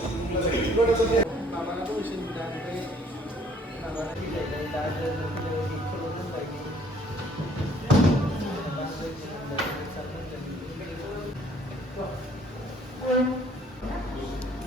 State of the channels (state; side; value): normal; both; correlation 0.60